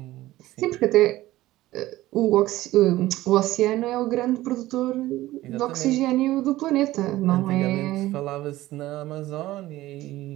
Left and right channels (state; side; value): quieter; left; 16.5 dB